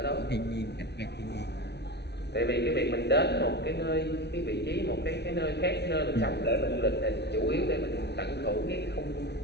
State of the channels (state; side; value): late; right; 0.49 ms